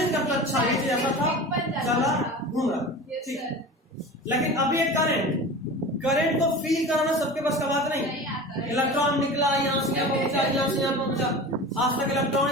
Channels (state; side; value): normal; both; correlation 0.34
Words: करता अच्छा ये चीज ऐसा था, चला घूम रहा, ठीक। लेकिन अभी एक करंट को फील कराना सबके पास का बात नहीं। इलेक्ट्रॉन निकला, यहाँ से यहाँ पहुंचा, यहाँ से यहाँ पहुंचा, आज तक इलेक्ट्रॉन